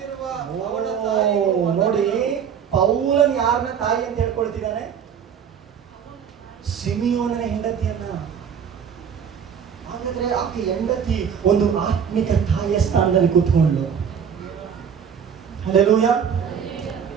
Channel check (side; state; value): left; quieter; 7.6 dB